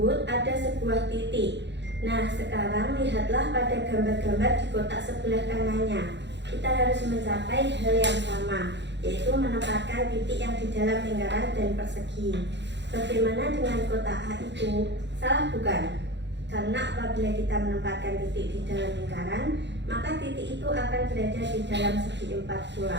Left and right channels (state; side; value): late; left; 0.51 ms